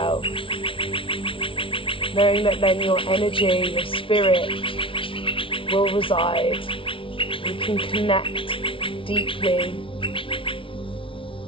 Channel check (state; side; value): late; right; 0.25 ms